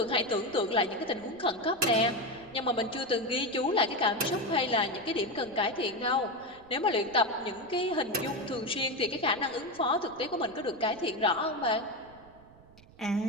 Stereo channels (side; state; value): right; noise; rumble, 24 dB below the sound